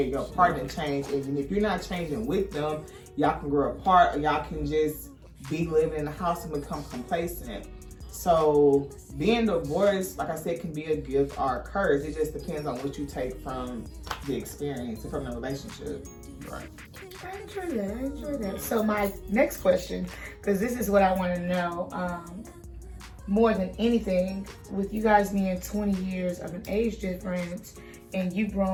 Your partner changes, and if you're not changing with them, y'all can grow apart, or y'all can just be living in the house and become complacent. So being divorced, like I said, can be a gift or a curse. It just depends on what you take from the experience and from the relationship. Right. I enjoy that. So my next question, because this is what I want to know, more than anything, with you guys being 20 years of an age difference, and you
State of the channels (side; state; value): both; identical; correlation 1.00